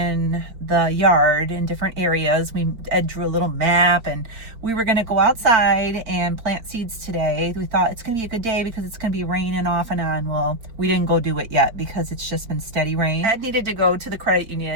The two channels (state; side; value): late; left; 4.7 ms